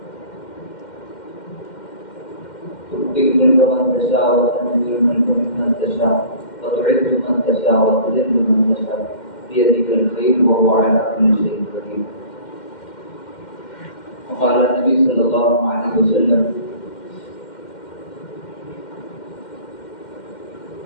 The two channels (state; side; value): late; right; 2.1 ms